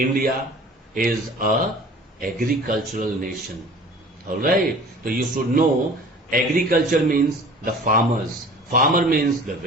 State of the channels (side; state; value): both; normal; correlation 0.45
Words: is a agricultural nation. Alright, so you should know agriculture means the farmers. Farmer means the